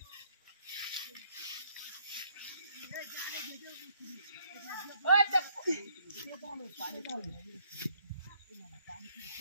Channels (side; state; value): both; inverted; correlation -0.68